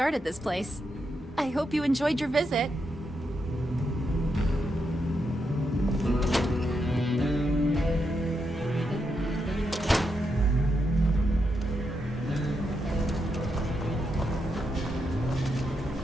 this place. I hope you enjoyed your visit.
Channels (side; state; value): both; normal; correlation 0.83